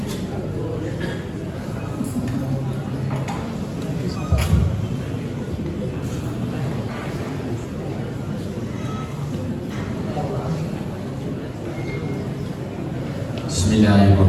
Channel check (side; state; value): both; identical; correlation 1.00